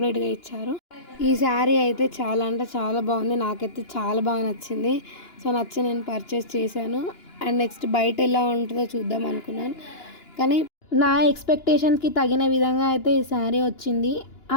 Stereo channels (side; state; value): right; late; 2.9 ms